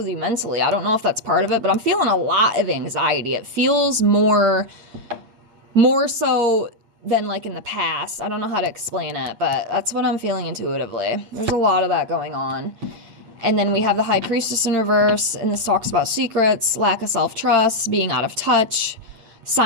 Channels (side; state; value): left; late; 8.5 ms